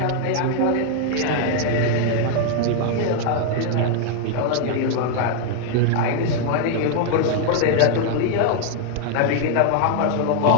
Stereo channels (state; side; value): different; both; correlation 0.00